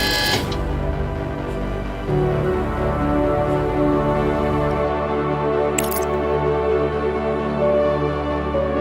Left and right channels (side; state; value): both; identical; correlation 1.00